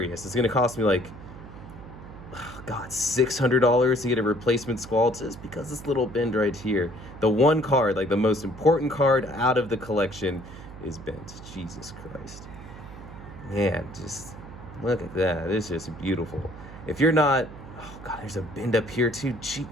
It's gonna cost me like, oh God, $600 to get a replacement Squall just because this little bend right here. The one card, like the most important card out of the collection, is bent. Jesus Christ. Man, just look at that. It's just beautiful. If you're not, oh God, there's a bend up here too. Gee,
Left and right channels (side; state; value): right; noise; hum, 15 dB below the sound